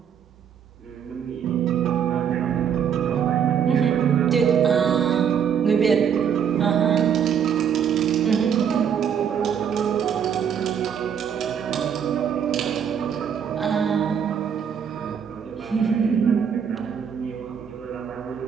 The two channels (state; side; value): quieter; left; 8.0 dB